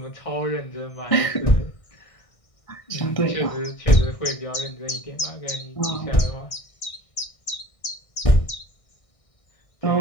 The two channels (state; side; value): late; right; 1.6 ms